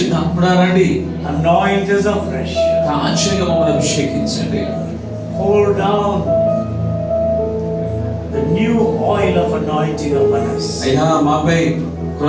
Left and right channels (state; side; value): identical; both; correlation 1.00